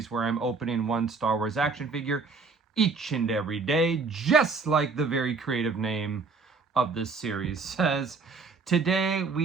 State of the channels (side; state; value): left; quieter; 4.5 dB